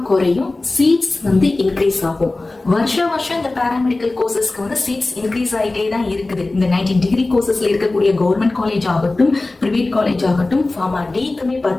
குறையும், சீட்ஸ் இன்க்ரீஸ் ஆகும். வருஷம் இந்த பாராமெடிக்கல் கோர்சஸ்க்கு சீட்ஸ் இன்க்ரீஸ் ஆகிட்டே தான் இருக்குது. இந்த 19 டிகிரி கோர்சஸ்ல இருக்கக்கூடிய கவர்மெண்ட் காலேஜ் ஆகட்டும் பிரைவேட் காலேஜ் ஆகட்டும் ஃபார்மா டிக்குமே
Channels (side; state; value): right; quieter; 3.1 dB